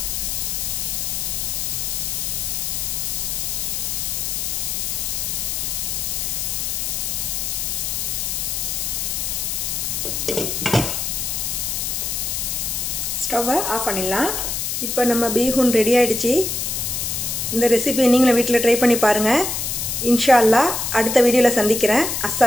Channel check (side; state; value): left; noise; hiss, 1 dB below the sound